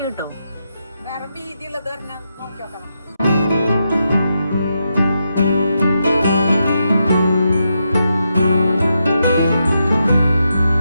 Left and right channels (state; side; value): inverted; both; correlation -0.84